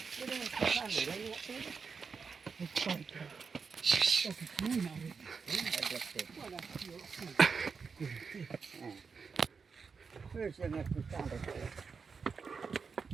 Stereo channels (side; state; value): left; quieter; 5.4 dB